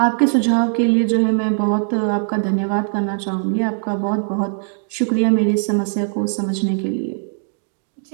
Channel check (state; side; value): silent; left; 66 dB below the other